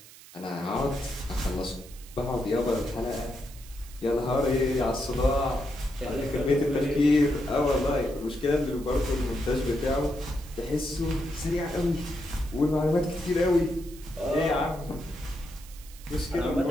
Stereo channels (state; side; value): noise; right; hiss, 20 dB below the sound